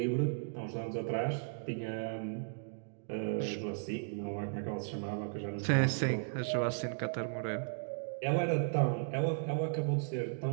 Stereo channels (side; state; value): left; silent; digital silence